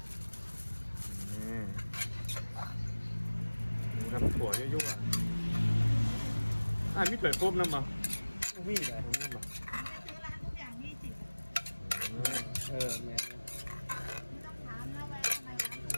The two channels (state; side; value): inverted; both; correlation -1.00